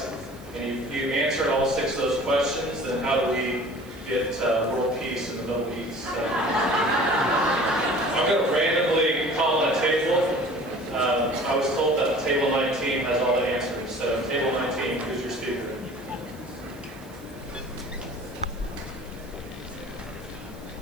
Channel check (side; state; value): right; noise; hiss, 25 dB below the sound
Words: And if you answered all 6 of those questions, then how do we get world peace in the Middle East? I'm going to randomly call on a table. I was told that table 19 has all the answers. So table 19, who's your speaker?